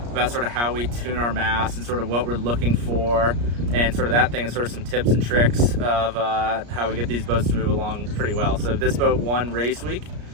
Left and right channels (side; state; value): left; late; 34 ms